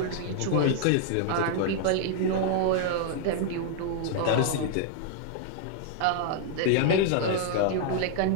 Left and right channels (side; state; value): both; different; correlation 0.00